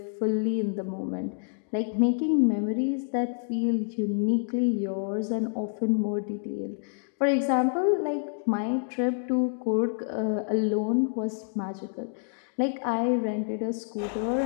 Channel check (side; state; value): right; silent; digital silence